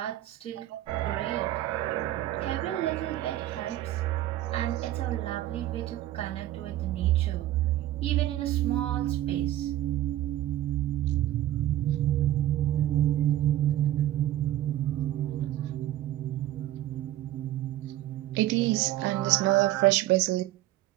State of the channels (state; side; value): quieter; left; 14.1 dB